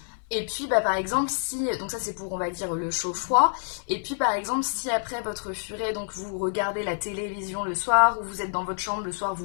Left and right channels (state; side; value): silent; right; 56 dB below the other